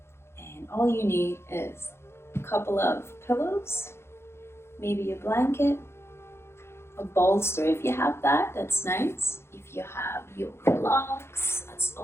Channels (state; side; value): late; right; 0.12 ms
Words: and all you need is a couple of pillows, maybe a blanket, a bolster if you have that, that's nice. If you have yoga blocks, that's